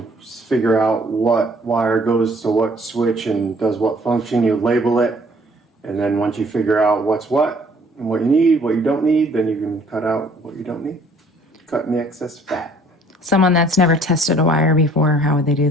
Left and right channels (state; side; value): normal; both; correlation 0.59